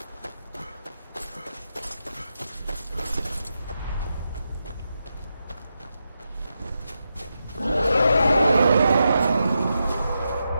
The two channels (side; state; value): both; inverted; correlation -0.87